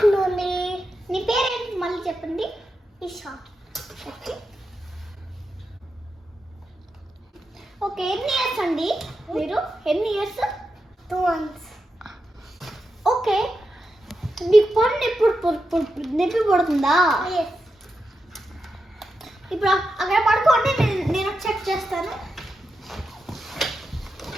నీ పేరేంటి మళ్ళీ చెప్పండి. ఈషా. ఓకే, ఎన్ని ఇయర్స్ అండి మీరు? ఎన్ని ఇయర్స్? 2 months. ఓకే, మీకు పన్ను ఎప్పుడు నొప్పి పడుతుందా? ఇప్పుడు అక్కడ పడుకోండి, నేను చెక్ చేస్తాను.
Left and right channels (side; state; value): both; normal; correlation 0.87